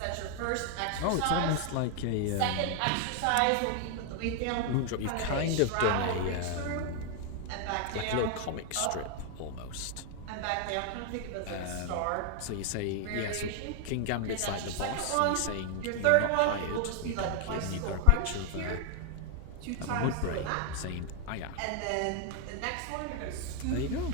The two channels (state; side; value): different; both; correlation 0.00